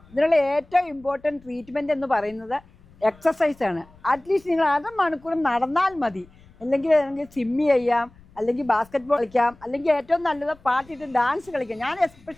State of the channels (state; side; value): noise; left; rumble, 26 dB below the sound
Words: ഇതിനുള്ള ഏറ്റവും ഇമ്പോർട്ടൻറ്റ് ട്രീറ്റ്മെൻറ്റ് എന്ന് പറയുന്നത് എക്സസൈസാണ്. അറ്റ്ലീസ്റ്റ് നിങ്ങൾ അരമണിക്കൂർ നടന്നാൽ മതി. അല്ലെങ്കിൽ സ്വിമ്മി ചെയ്യാം, അല്ലെങ്കിൽ ബാസ്കറ്റ് ബോൾ കളിക്കാം, അല്ലെങ്കിൽ ഏറ്റവും നല്ലത് പാട്ടിട്ട് ഡാൻസ് കളിക്കാം. ഞാൻ